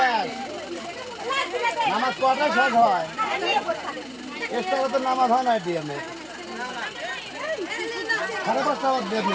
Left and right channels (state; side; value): noise; right; hum, 29 dB below the sound